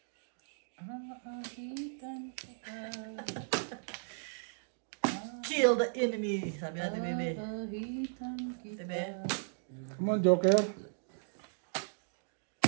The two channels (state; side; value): silent; left; digital silence